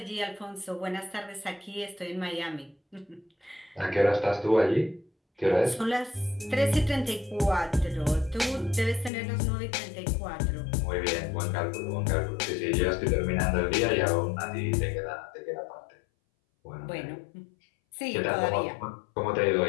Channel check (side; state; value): right; drops out; at 9.1 s